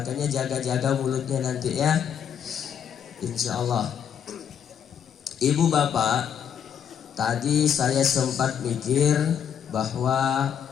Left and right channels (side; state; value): right; quieter; 8.4 dB